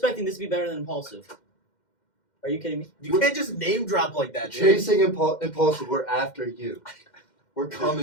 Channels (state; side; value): late; right; 2.1 ms